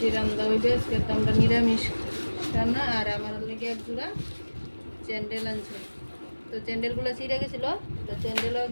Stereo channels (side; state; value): both; inverted; correlation -1.00